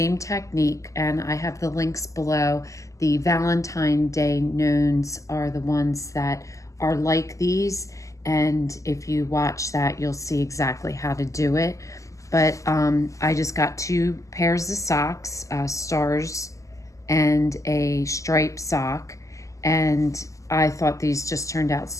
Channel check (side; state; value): right; late; 0.16 ms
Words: technique, and I have the links below. The Valentine Day gnomes are the ones that are like these, and if you watch that you'll see exactly how to do it. But I just got 2 pairs of socks, stars and a striped sock, and I thought these just turned out